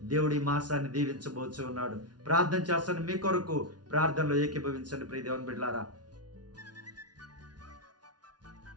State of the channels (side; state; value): left; late; 0.69 ms